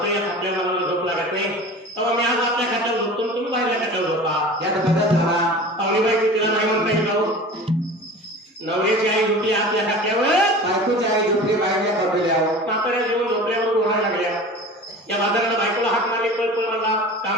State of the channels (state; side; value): normal; both; correlation 0.37